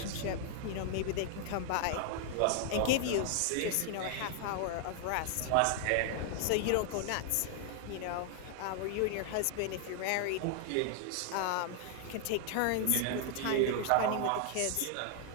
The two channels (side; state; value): both; different; correlation 0.00